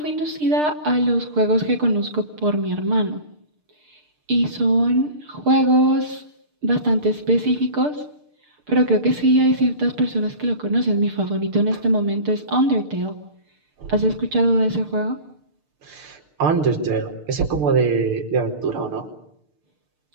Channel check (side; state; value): left; late; 6.7 ms